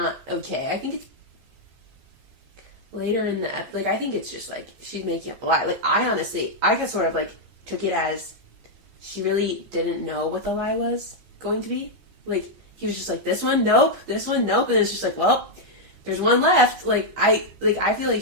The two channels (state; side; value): late; left; 15 ms